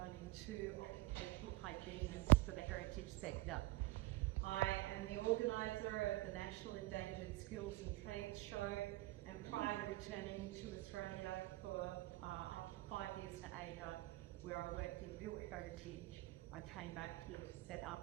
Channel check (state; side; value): quieter; left; 18.7 dB